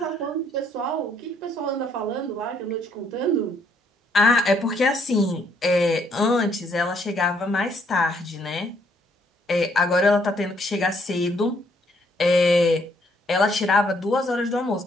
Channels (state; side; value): normal; both; correlation 0.69